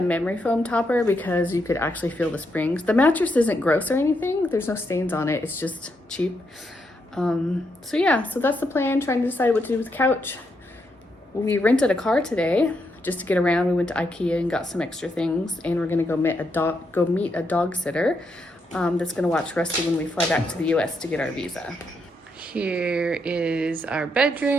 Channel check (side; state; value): both; normal; correlation 0.80